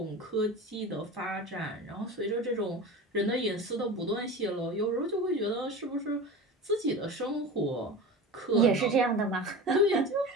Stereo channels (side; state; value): both; normal; correlation 0.31